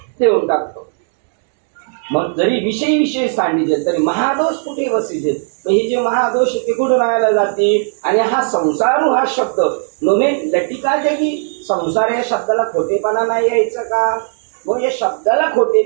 देऊन टाकतो. मग जरी विषय सांगितले तरी महादोष कुठे वसिते. हे जे महादोष ते कुठे राहायला जाते. आणि हा संसारू हा शब्द नोमे लटिका जगी, संसार या शब्दाला खोटेपणा नाही यायचं का? मग या शब्दाला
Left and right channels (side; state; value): left; silent; 69 dB below the other